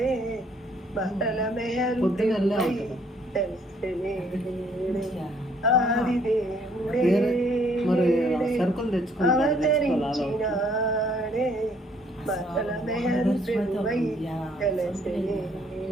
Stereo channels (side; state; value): both; normal; correlation 0.64